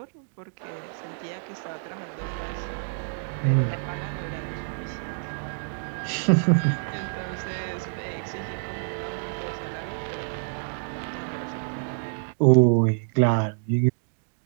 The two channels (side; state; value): left; silent; digital silence